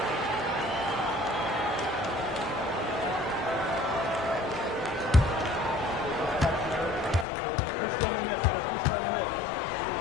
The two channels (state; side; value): drops out; right; at 7.2 s